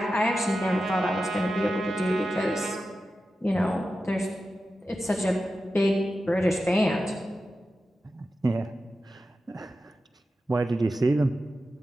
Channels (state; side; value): normal; both; correlation 0.92